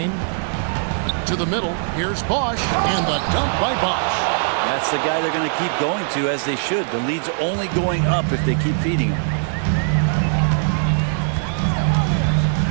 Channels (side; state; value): left; silent; 64 dB below the other